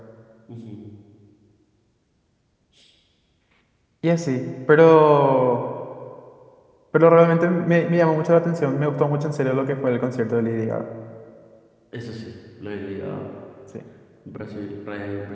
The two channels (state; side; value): identical; both; correlation 1.00